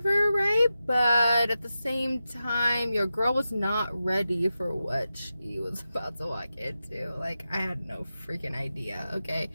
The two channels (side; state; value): both; inverted; correlation -0.92